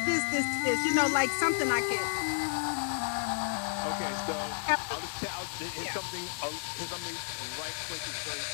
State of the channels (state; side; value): silent; right; digital silence